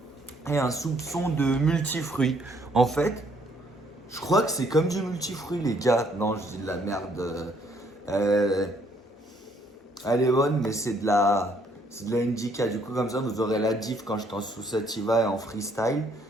et un soupçon de multifruits. En fait, je crois que c'est comme du multifruit, les gars. Non, je dis de la merde. Euh, Elle est bonne, mais c'est de la indica. Du coup, comme ça, vous aurez la diff quand j'étais en sous sativa et en freestyle.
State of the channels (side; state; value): both; normal; correlation 0.66